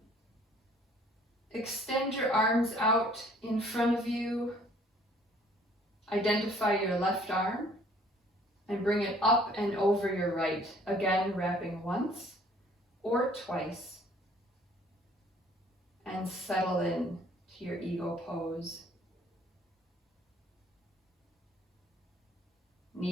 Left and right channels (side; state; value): both; normal; correlation 0.57